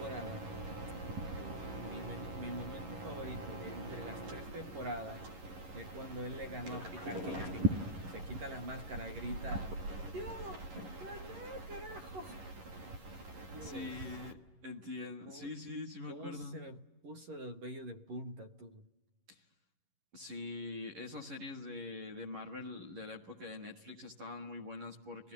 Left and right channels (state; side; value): late; left; 11 ms